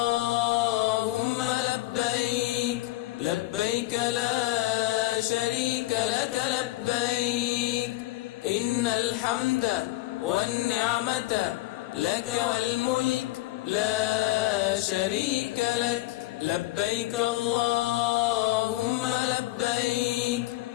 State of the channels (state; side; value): quieter; right; 18.2 dB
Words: لبيك، لبيك لا شريك لك لبيك، إن الحمد والنعمة لك والملك لا شريك لك. لبيك اللهم لبيك،